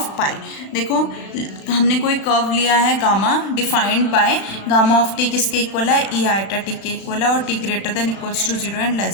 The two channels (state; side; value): late; right; 36 ms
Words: pi. देखो हमने कोई कर्व लिया है gamma defined by gamma of T किसके इक्वल है, ई आइटा टी के इक्वल है, और T greater than equals to 0 and